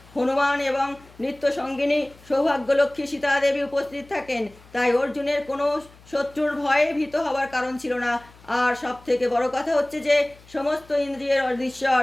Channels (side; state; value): left; noise; hum, 25 dB below the sound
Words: হনুমান এবং নিত্য সঙ্গিনী সৌভাগ্যলক্ষ্মী সীতা দেবী উপস্থিত থাকেন। তাই অর্জুনের কোনো শত্রুর ভয়ে ভীত হবার কারণ ছিল না। আর সব থেকে বড় কথা হচ্ছে যে সমস্ত ইন্দ্রিয়ের অধীশ্বর